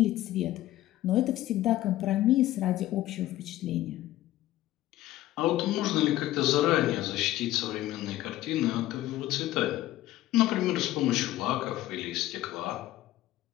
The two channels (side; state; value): right; quieter; 15.1 dB